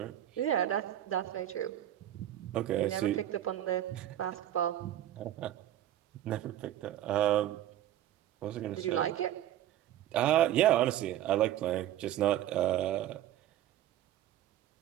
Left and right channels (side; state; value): left; quieter; 12.5 dB